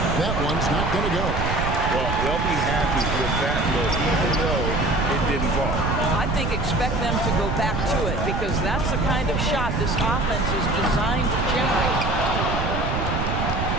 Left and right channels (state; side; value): noise; right; rumble, 1 dB below the sound